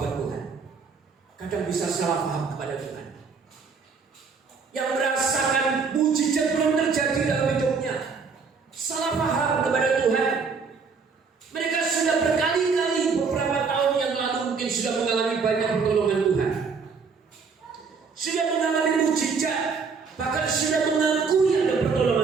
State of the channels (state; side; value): quieter; left; 5.2 dB